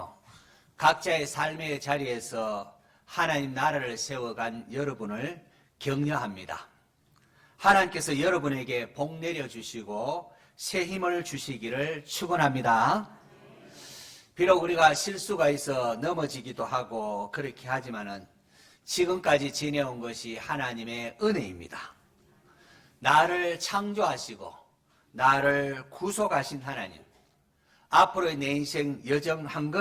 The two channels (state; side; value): identical; both; correlation 1.00